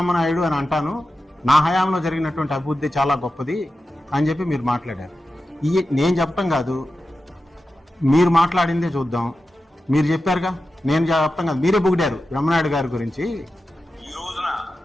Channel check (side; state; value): both; normal; correlation 0.92